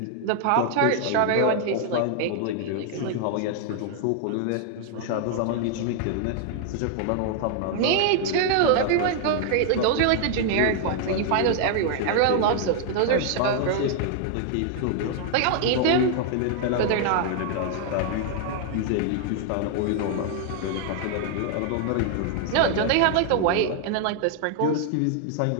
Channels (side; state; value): both; different; correlation 0.00